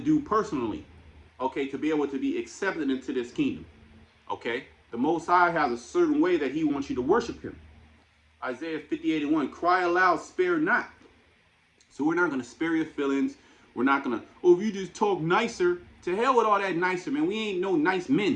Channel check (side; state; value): both; identical; correlation 1.00